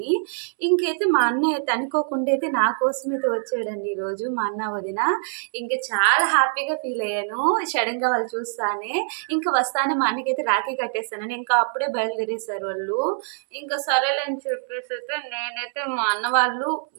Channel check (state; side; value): silent; left; 63 dB below the other